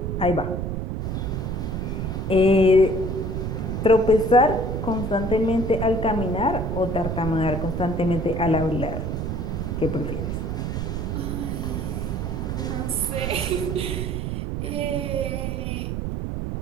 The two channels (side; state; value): right; noise; rumble, 2 dB below the sound